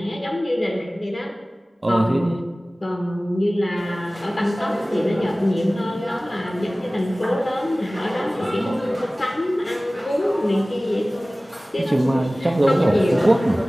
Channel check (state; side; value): normal; both; correlation 0.98